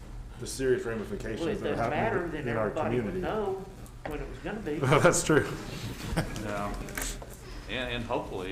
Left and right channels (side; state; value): both; identical; correlation 1.00